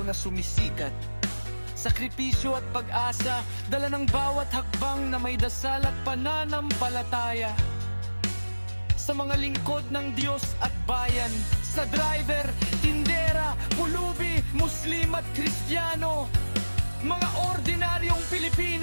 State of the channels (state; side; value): inverted; both; correlation -1.00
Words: na sumisikat. Sakripisyo at pag-asa, dala ng bawat hakbang na may dasal at pananampalataya. Sa mga lingkod ng Diyos at bayan, sa driver, tindera, pulubi, Muslim at Kristiyano, mga ordinaryong